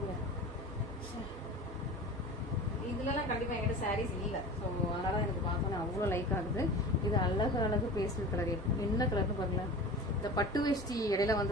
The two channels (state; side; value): normal; both; correlation 0.35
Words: இதுலலாம் கண்டிப்பா என்கிட்ட சாரீஸ் இல்லை. ஸோ அதனால எனக்கு பார்த்தோன்னே அவ்வளோ லைக் ஆகுது. இது அழகு பேஸ்டல் கலர். என்ன கலர்னு பாருங்களேன். இந்த பட்டு வேஷ்டி இடையில